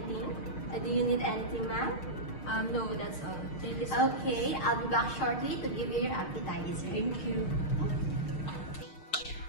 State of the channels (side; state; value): right; late; 6.5 ms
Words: Do you need anything, ma'am? No, that's all. Thank you so much. Okay, I'll be back shortly to give you your appetizer. Thank you.